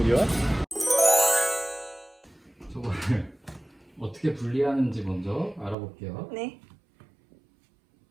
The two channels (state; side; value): drops out; left; at 5.8 s